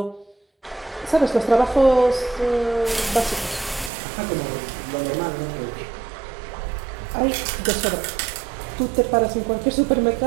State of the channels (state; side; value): drops out; left; at 3.9 s